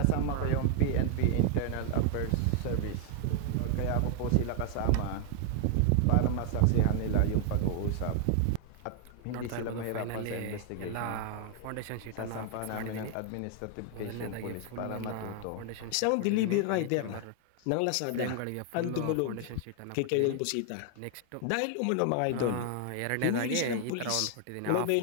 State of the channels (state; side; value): different; both; correlation 0.00